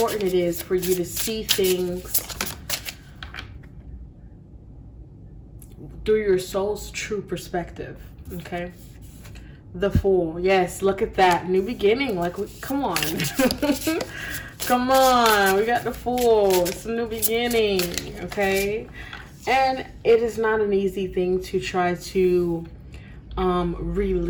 it is for you to see things through your soul's true perspective. Okay. The Fool. Yes, look at that. New beginning. Like, come on. Come on. We got the Fool. It's a new beginning. Okay. And it is not an easy thing to try to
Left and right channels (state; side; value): identical; both; correlation 1.00